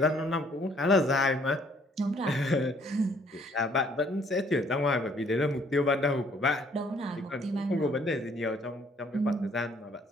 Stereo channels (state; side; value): normal; both; correlation 0.63